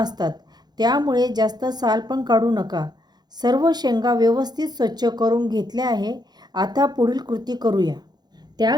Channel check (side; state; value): left; late; 0.20 ms